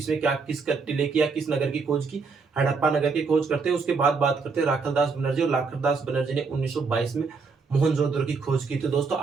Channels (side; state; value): left; quieter; 4.7 dB